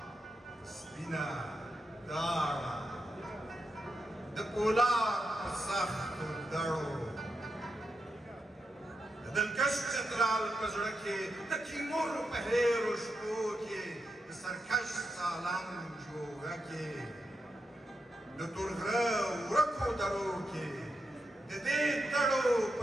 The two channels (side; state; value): both; normal; correlation 0.86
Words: سپینه داړه د پولاد په سختو دړو د دلکش چترال په زړه کې د تیمور په هیرو شپو کې د سرکش سالنګ جوړه کې د تورغره ورکو درو کې د دې دړو